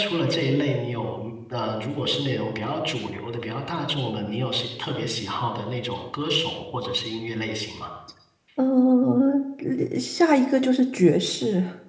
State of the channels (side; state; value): both; identical; correlation 1.00